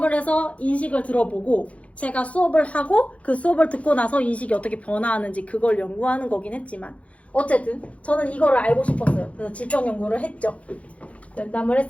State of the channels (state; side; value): late; right; 0.064 ms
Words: 해서 인식을 들어보고 제가 수업을 하고 그 수업을 듣고 나서 인식이 어떻게 변화하는지 그걸 연구하는 거긴 했지만 어쨌든 저는 이거를 알고 싶었어요. 그래서 질적 연구를 했죠. 면담을